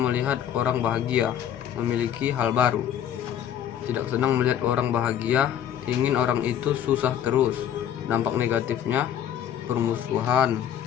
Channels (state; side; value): quieter; right; 9.9 dB